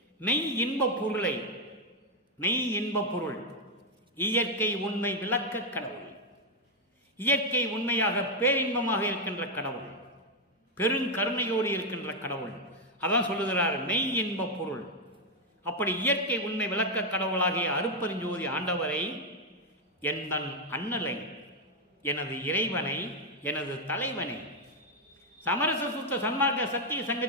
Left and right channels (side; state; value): both; normal; correlation 0.01